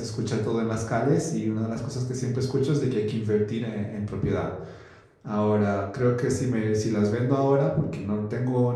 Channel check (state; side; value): identical; both; correlation 1.00